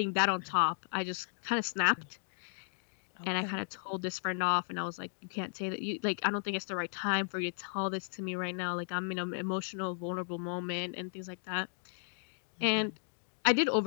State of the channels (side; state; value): right; silent; digital silence